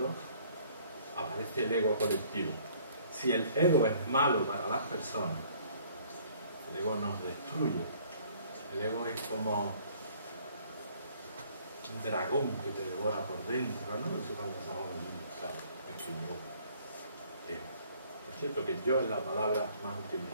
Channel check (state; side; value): inverted; both; correlation -0.58